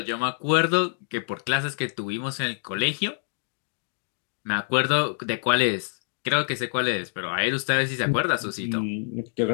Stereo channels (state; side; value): silent; right; digital silence